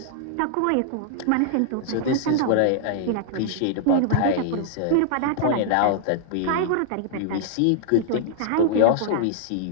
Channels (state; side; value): different; both; correlation -0.01